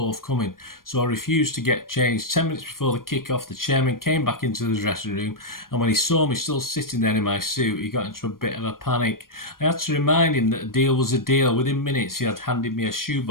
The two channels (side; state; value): right; late; 0.91 ms